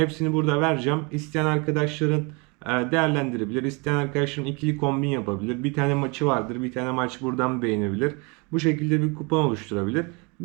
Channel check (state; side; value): quieter; left; 30.0 dB